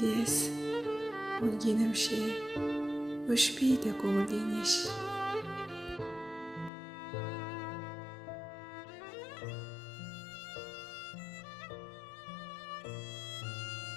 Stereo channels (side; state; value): right; drops out; at 6.7 s